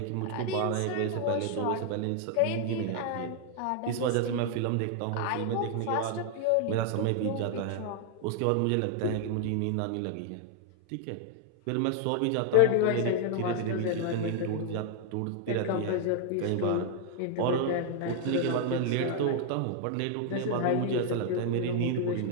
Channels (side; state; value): both; different; correlation 0.00